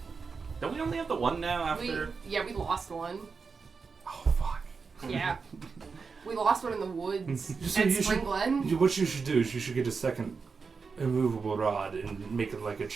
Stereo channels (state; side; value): quieter; left; 5.0 dB